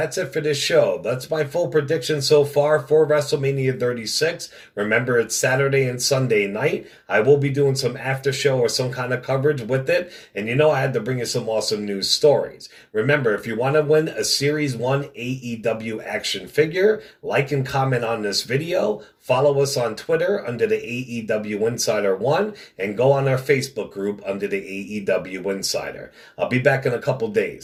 it for this show. That's my full prediction so far for WrestleMania 36. Remember, it's Saturday and Sunday night. I will be doing some after show or some kind of coverage with it. And you know I had to bring you some awesome news stories. Remember, if you want to win a Series 1 AEW action figure, like and comment on this video. Follow us on Twitter under the AEW Insider 1 and go on our Facebook group under the AEW Insider. I'll be back in a couple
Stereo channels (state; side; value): identical; both; correlation 1.00